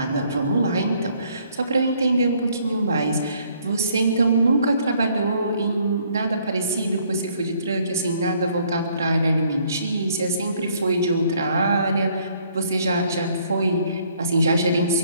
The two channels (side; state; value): both; inverted; correlation -0.64